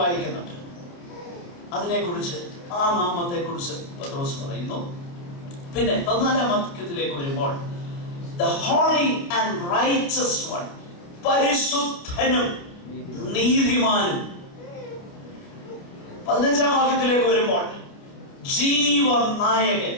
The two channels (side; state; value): right; late; 29 ms